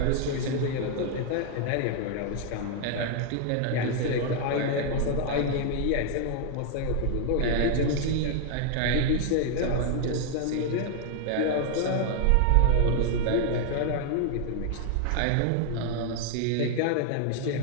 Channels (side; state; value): both; different; correlation 0.00